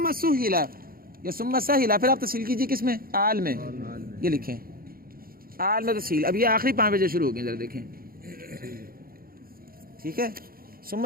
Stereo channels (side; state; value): left; late; 0.43 ms